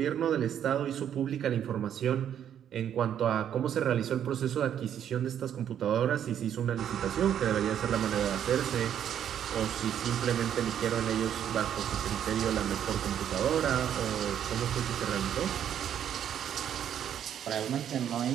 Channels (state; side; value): quieter; left; 9.6 dB